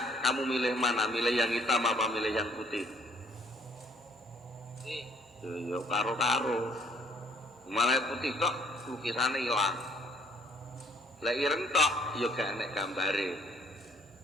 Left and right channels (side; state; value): both; normal; correlation 0.60